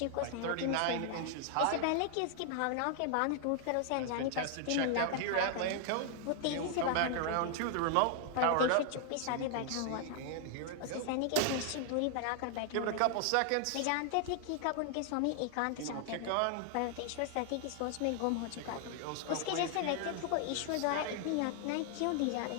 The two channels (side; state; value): both; different; correlation 0.00